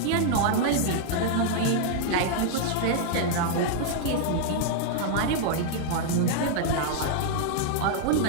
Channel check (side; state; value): both; different; correlation -0.01